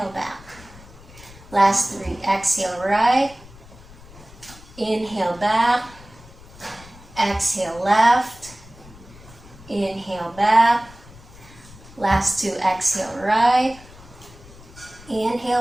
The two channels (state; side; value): noise; left; rumble, 21 dB below the sound